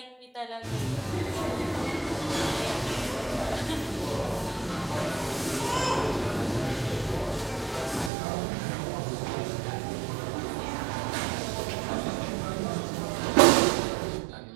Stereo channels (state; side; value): drops out; left; at 8.1 s